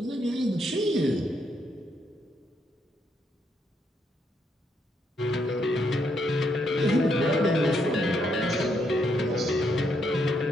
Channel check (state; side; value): normal; both; correlation 0.76